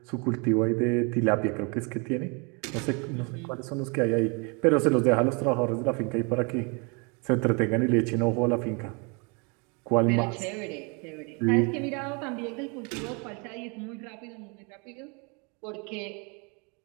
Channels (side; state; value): left; quieter; 32.8 dB